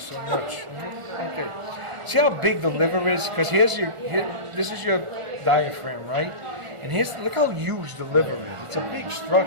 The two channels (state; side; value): late; left; 1.4 ms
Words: much. Okay. See how big the liver is? Because this is your diaphragm, right? And look how huge the liver is. It's a big